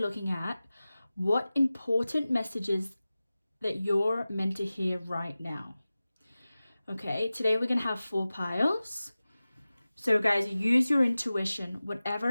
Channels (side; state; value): both; inverted; correlation -0.96